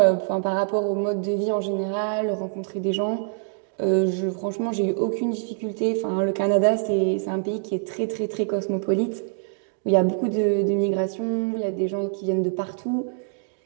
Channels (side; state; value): left; silent; digital silence